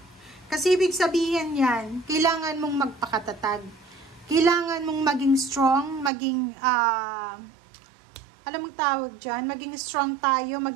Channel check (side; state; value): left; drops out; at 6.1 s